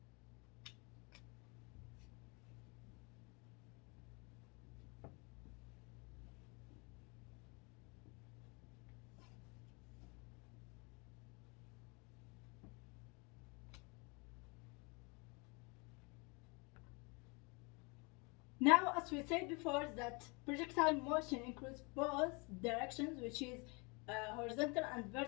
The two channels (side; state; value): right; quieter; 30.6 dB